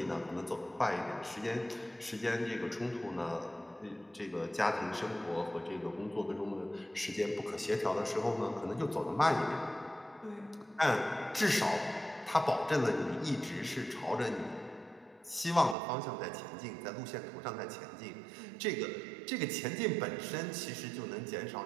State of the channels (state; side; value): drops out; left; at 15.8 s